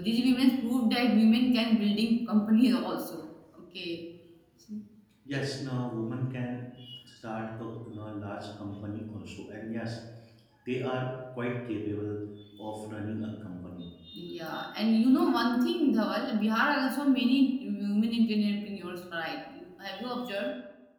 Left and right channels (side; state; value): both; identical; correlation 1.00